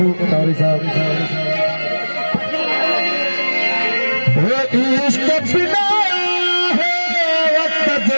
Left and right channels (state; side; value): inverted; both; correlation -1.00